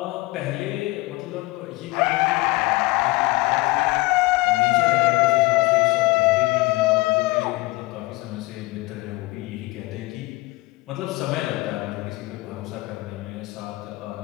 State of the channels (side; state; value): right; quieter; 22.3 dB